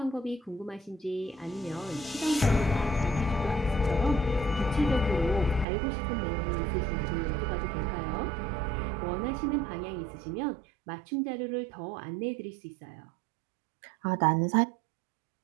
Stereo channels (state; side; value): drops out; left; at 5.7 s